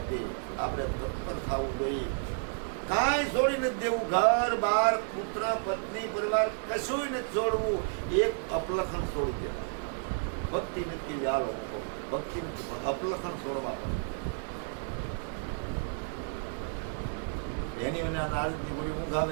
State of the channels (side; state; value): left; silent; 57 dB below the other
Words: આપણે તત્પર થવું જોઈએ. કાંઈ છોડી નથી દેવું. ઘર બાર પુત્ર પત્ની પરિવાર કશું નથી છોડવું. એક અપલખણ છોડી દેવા. ભક્તિ નથી વ્યાલો, ભક્તિ નથી પણ અપલખણ છોડવા પડે. એની મને નારદની ગોળી ઊંઘ